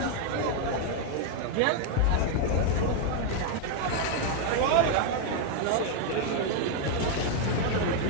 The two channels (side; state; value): both; different; correlation 0.00